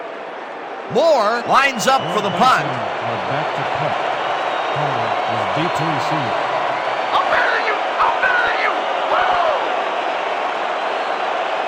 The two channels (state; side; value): identical; both; correlation 1.00